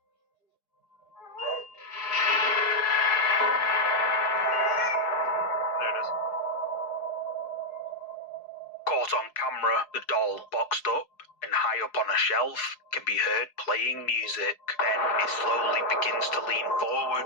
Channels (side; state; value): right; late; 4.6 ms